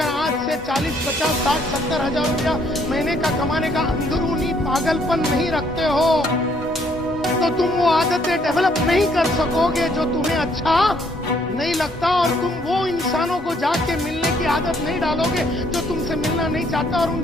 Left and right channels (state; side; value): normal; both; correlation 0.67